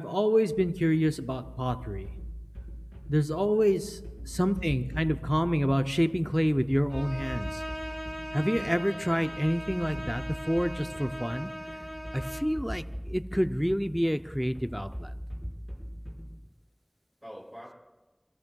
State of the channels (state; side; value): identical; both; correlation 1.00